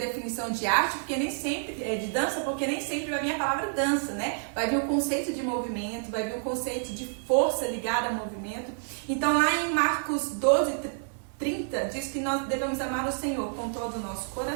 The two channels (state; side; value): silent; left; 59 dB below the other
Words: de arte, porque nem sempre, de dança, porque nem sempre vai vir a palavra dança, né? Vai vir o conceito de movimento, vai vir o conceito de força ligada ao movimento. Então lá em Marcos 12:30 diz que nós devemos amar o Senhor com todo o nosso